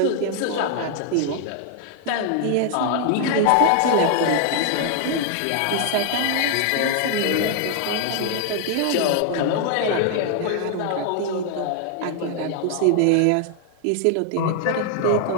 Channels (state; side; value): different; both; correlation 0.00